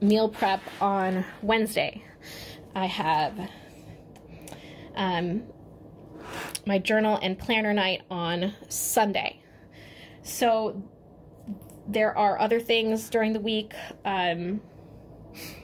meal prep on Wednesday. I have my journal and planner night on Sunday. So there are other things during the week.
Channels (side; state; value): both; identical; correlation 1.00